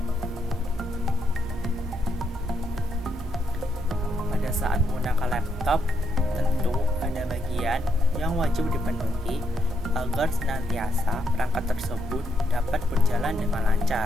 Pada saat menggunakan laptop, tentu ada bagian yang wajib dipenuhi agar senantiasa perangkat tersebut dapat berjalan dengan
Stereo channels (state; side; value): normal; both; correlation 0.78